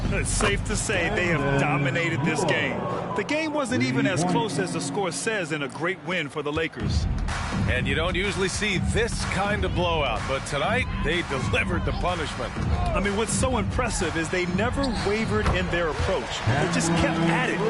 It's safe to say they have dominated this game. The game wasn't even as close as the score says in a great win for the Lakers. And you don't usually see this kind of blowout, but tonight they delivered the punishment. I mean, what's so impressive is they never wavered in their approach. They just kept at it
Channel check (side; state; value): both; identical; correlation 1.00